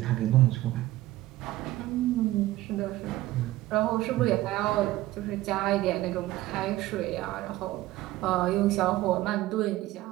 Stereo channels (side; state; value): left; quieter; 16.5 dB